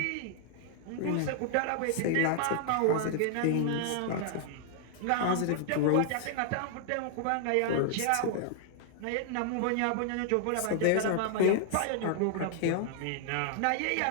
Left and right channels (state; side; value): different; both; correlation -0.01